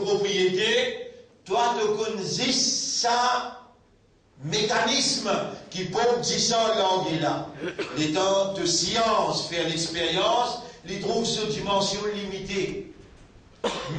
Toi, tu connais ça mécanisme qui peut dire ça langue là. Les temps de science, faire l'expérience, les trouve cette dimension limitée.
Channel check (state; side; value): identical; both; correlation 1.00